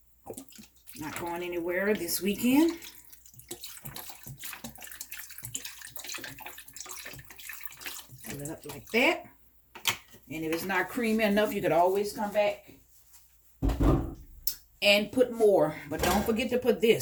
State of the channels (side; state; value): both; identical; correlation 1.00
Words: Not going anywhere this weekend. Fill it up like that. And if it's not creamy enough, you could always come back and put more. But don't forget to put